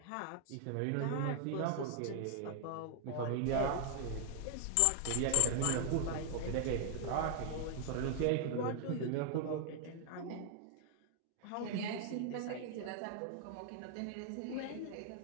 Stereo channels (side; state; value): both; different; correlation 0.00